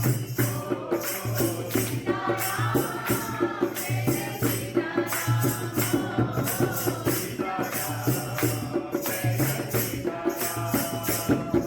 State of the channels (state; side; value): identical; both; correlation 1.00